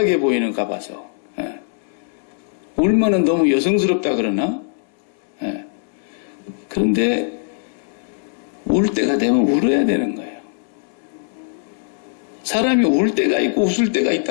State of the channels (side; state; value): right; silent; 65 dB below the other